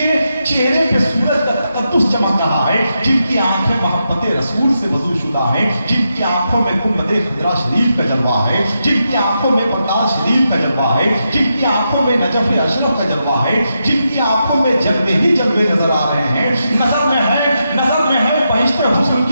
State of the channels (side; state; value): both; inverted; correlation -0.85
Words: چہرے پہ سورج کا تقدس چمک رہا ہے، جن کی آنکھیں محبت رسول سے وضو شدہ ہیں، جن کی آنکھوں میں گنبد خضرا شریف کا جلوہ ہے، جن کی آنکھوں میں بغداد شریف کا جلوہ ہے، جن کی آنکھوں میں نجف اشرف کا جلوہ ہے، جن کی آنکھوں میں جلوے ہی جلوے نظر آ رہے ہیں۔ نظر میں ہے بہشت حسن